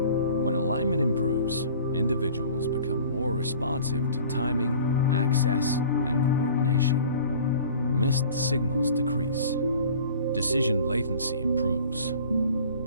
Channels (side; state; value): both; inverted; correlation -0.46